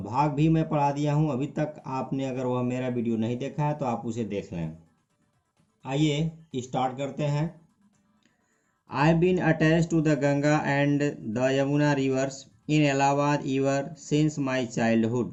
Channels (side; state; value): both; identical; correlation 1.00